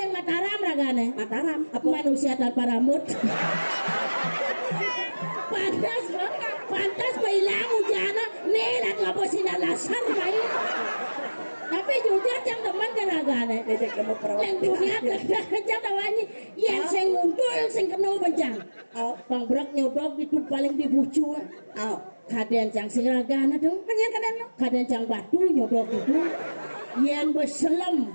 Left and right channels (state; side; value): inverted; both; correlation -1.00